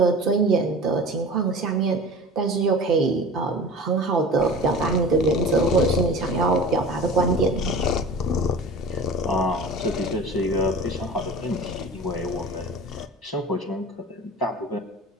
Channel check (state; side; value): normal; both; correlation 0.37